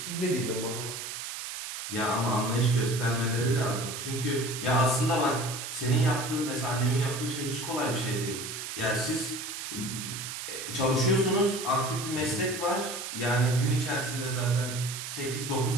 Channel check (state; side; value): noise; right; hiss, 7 dB below the sound